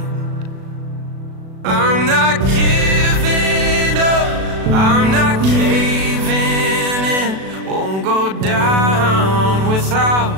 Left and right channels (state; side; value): late; left; 37 ms